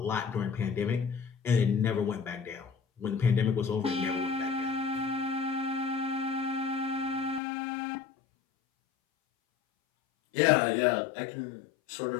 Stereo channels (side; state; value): right; drops out; at 7.4 s